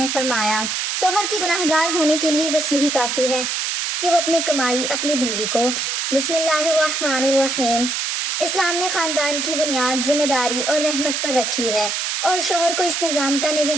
فرمایا، شوہر کے گناہ گار ہونے کے لیے بس یہی کافی ہے کہ وہ اپنی کمائی اپنی بیوی کو۔ بسم اللہ الرحمن الرحیم۔ اسلام نے خاندان کی بنیاد ذمہ داری اور رحمت پر رکھی ہے اور شوہر کو اس نظام کا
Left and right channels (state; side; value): noise; right; hiss, 1 dB below the sound